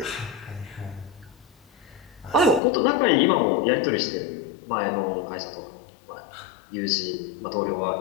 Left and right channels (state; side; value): drops out; right; at 2.6 s